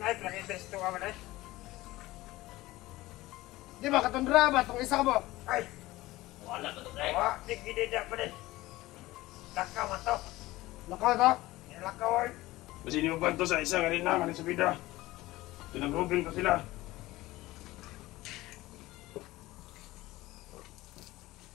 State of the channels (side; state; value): right; quieter; 18.3 dB